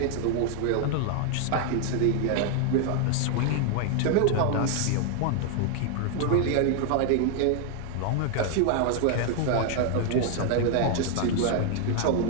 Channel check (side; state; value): both; different; correlation 0.00